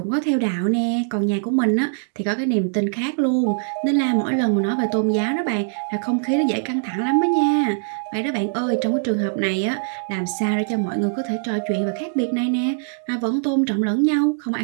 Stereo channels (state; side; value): silent; left; digital silence